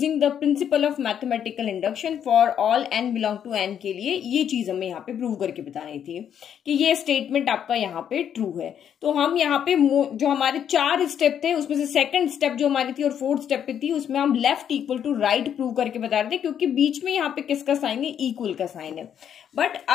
the principle of mathematical induction for all n belong to n के लिए। ये चीज हमें यहाँ पे प्रूव करके बतानी थी कि ये स्टेटमेंट आपका यहाँ पे ट्रू है। तो हम यहाँ पे जो हमारे 4 स्टेप थे उसमें से सेकंड स्टेप जो हमारी थी और फोर्थ स्टेप पे थी, उसमें हम left equal to right prove करके बता रहे थे, क्योंकि बीच में यहाँ पे किसका साइन है, इक्वल का साइन है। बट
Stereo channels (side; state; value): right; quieter; 8.9 dB